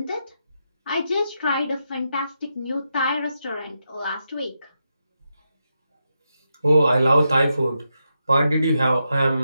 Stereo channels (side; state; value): both; inverted; correlation -0.85